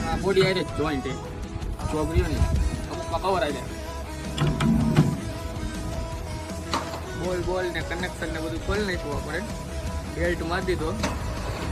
બોડી આઈ જોઈન્ટ ચોગરીઓ ને અમુકમાં કવર આવી જાય. બોલ ને કનેક્શન ને બધું ખોલી નાખ્યું આપણે. બેલ્ટ મારી દીધો.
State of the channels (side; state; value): both; identical; correlation 1.00